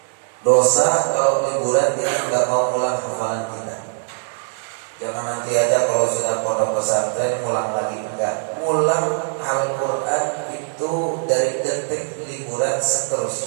Dosa kalau liburan kita nggak mau ulang hafalan kita. Jangan nanti aja kalau sudah pondok pesantren ngulang lagi, enggak. Ngulang Al-Quran itu dari detik liburan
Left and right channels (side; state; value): left; silent; 61 dB below the other